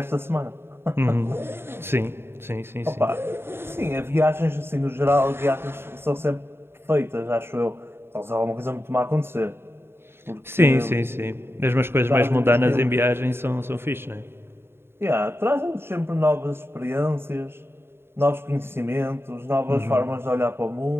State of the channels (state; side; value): late; left; 0.11 ms